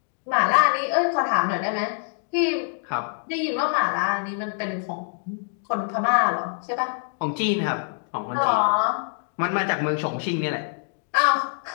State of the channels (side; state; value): right; silent; 62 dB below the other